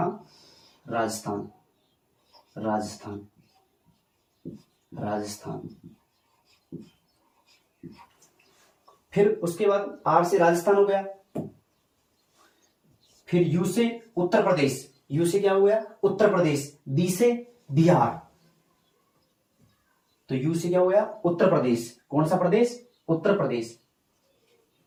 राजस्थान, राजस्थान, राजस्थान। फिर उसके बाद आर से राजस्थान हो गया। फिर यू से उत्तर प्रदेश, यू से क्या हो गया? उत्तर प्रदेश। बी से बिहार, तो यू से क्या हो गया? उत्तर प्रदेश। कौन सा प्रदेश? उत्तर प्रदेश,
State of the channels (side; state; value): both; identical; correlation 1.00